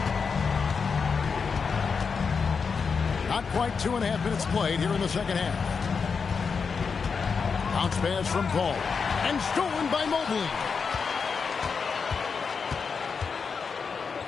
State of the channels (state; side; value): quieter; right; 5.5 dB